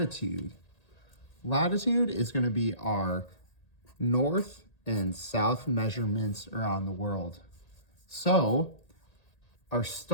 Latitude is going to be our north and south measurements around the world. So, our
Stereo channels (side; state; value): right; late; 1.8 ms